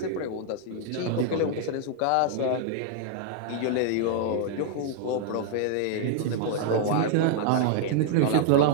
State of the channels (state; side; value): different; both; correlation 0.00